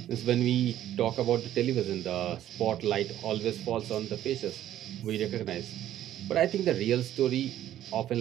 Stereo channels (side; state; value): left; quieter; 12.2 dB